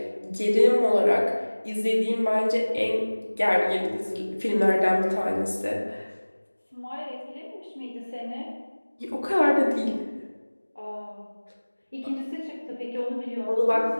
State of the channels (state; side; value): inverted; both; correlation -1.00